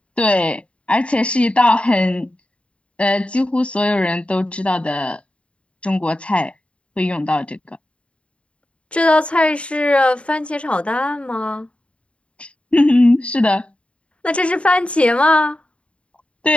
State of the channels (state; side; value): late; right; 0.060 ms